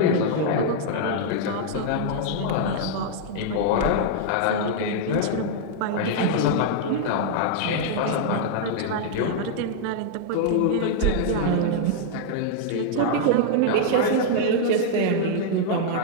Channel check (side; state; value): both; different; correlation -0.01